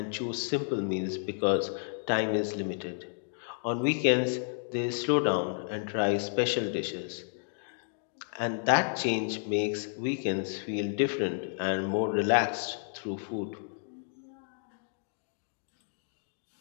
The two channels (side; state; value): right; silent; digital silence